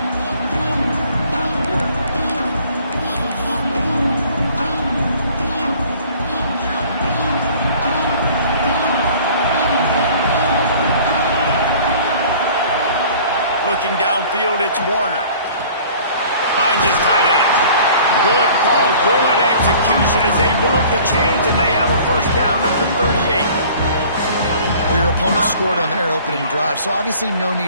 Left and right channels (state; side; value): inverted; both; correlation -0.50